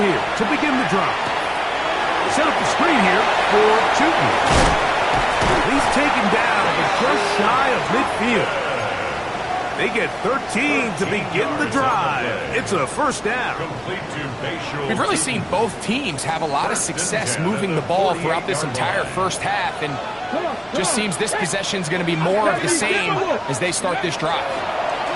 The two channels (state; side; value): identical; both; correlation 1.00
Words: here to begin the drive. Set up the screen here for Chutin. He's taken down, but just shy of midfield. They get 13 to begin the drive. It's a first down. We've really seen both teams have a lot of success moving the ball throughout this entire first half, and just seems this possession is going to be more of the same as they start this drive.